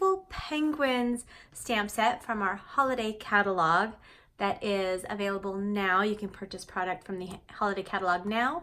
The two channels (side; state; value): both; identical; correlation 1.00